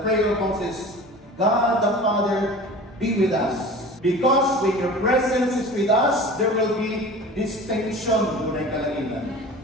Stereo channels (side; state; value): both; normal; correlation 0.39